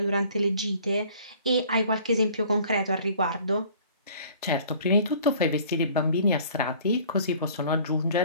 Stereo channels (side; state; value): both; inverted; correlation -0.52